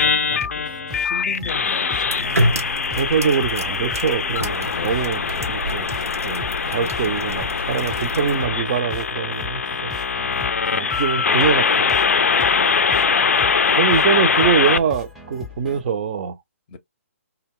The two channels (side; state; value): both; normal; correlation -0.11